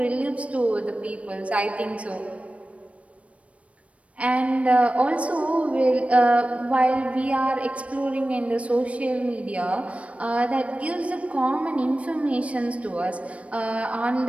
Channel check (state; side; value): late; left; 0.064 ms